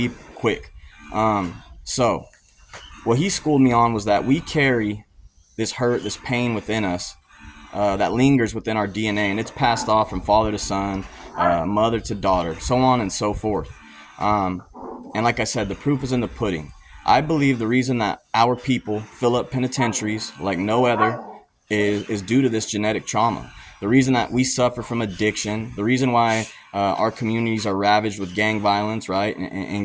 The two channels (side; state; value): both; identical; correlation 1.00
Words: quick. So what he schooled me on was that we carry this hurt, this pain within us that lingers within our DNA, and it's passed off from father to son, mother to daughter, so on and so forth. And like I said, the proof is in the pudding. I believe the reason that our people fill up penitentiaries like no other is due to this genetic trauma. The reason that we suffer from addiction, the reason why our communities are ravaged with gang violence, right,